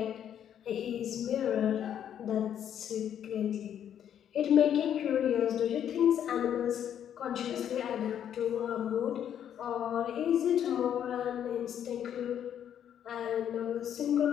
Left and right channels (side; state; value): right; quieter; 9.6 dB